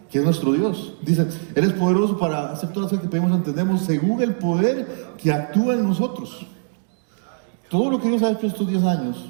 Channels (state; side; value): silent; left; digital silence